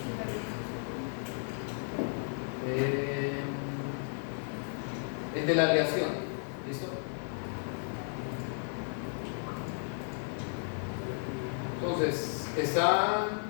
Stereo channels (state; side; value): silent; right; 55 dB below the other